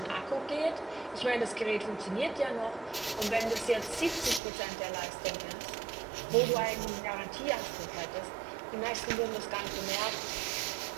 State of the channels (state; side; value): drops out; left; at 4.4 s